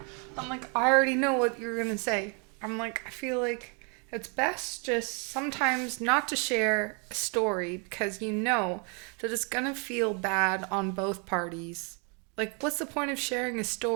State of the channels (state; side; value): quieter; left; 35.5 dB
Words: I'm like, I already know what you're gonna say. I'm like, I feel like it's best just sometimes not to share a story because you know that it's gonna feel bad on both parties. Like, what's the point of sharing a